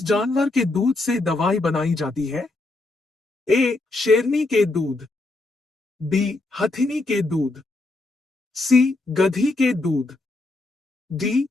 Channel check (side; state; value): right; quieter; 3.0 dB